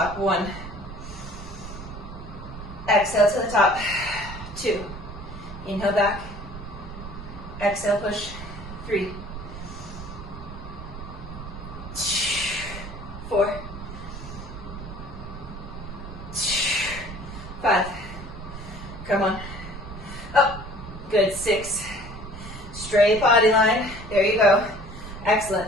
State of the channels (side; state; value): right; noise; rumble, 11 dB below the sound